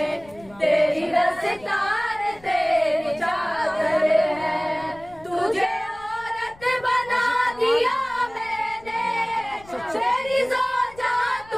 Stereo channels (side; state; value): left; noise; rumble, 24 dB below the sound